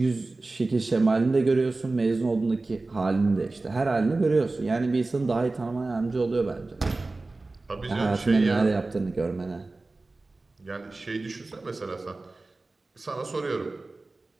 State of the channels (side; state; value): left; quieter; 3.3 dB